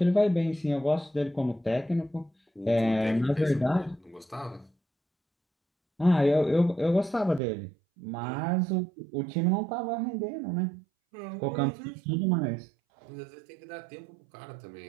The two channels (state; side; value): drops out; left; at 7.4 s